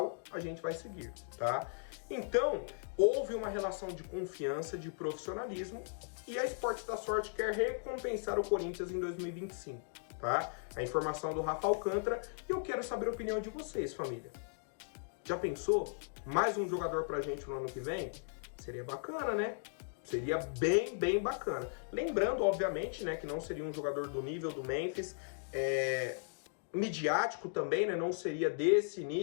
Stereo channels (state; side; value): silent; right; digital silence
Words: a gente vai seguir, tá? Então, houve uma relação de confiança, de profissionalismo, e a Esportes da Sorte quer recompensar o Corinthians em 2025. Tá? A informação do Rafa Alcântara e eu quero saber a opinião de vocês, família. Já pensou? Mais um jogador pra gente no ano que vem? Seria bacana, né? Seria bem bacana. Lembrando, obviamente, né, que não seria um jogador do nível do Memphis, midiático também, né? Não seria desse